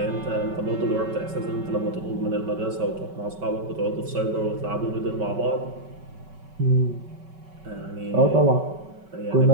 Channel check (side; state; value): left; late; 5.3 ms